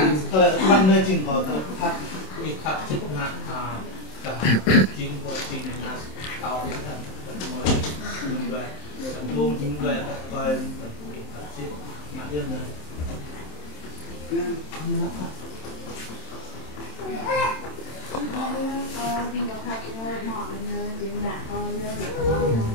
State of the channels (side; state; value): right; late; 27 ms